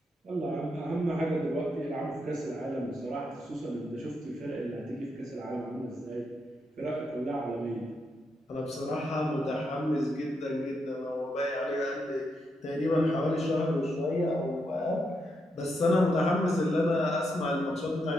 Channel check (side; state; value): both; normal; correlation 0.81